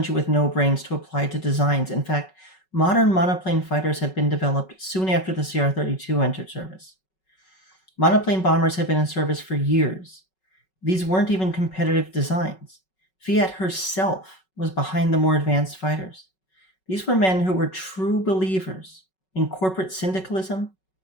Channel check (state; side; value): late; right; 5.3 ms